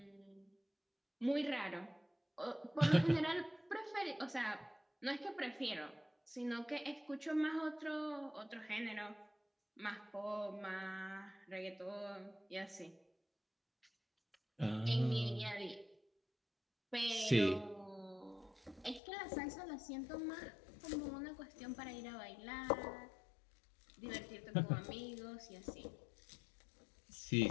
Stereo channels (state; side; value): drops out; right; at 19.0 s